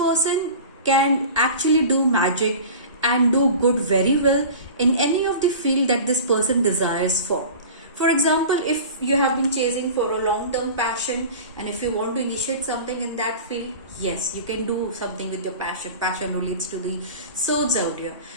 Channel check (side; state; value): both; inverted; correlation -0.37